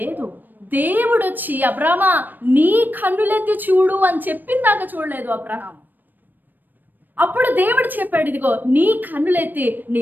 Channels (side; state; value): left; late; 0.090 ms